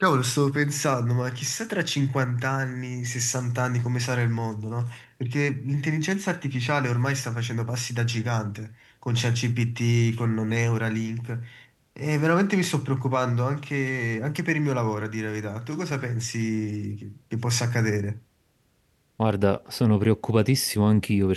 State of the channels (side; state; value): both; identical; correlation 1.00